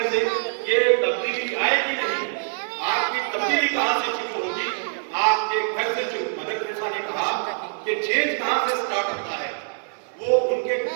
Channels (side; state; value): left; silent; digital silence